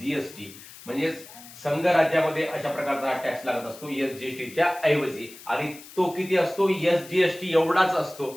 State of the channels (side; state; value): left; noise; hiss, 18 dB below the sound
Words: म्हणजे संघराज्यामध्ये अशा प्रकारचा टॅक्स लागत असतो एसजीएसटीच्या ऐवजी. आणि तो किती असतो? एसजीएसटी एवढाच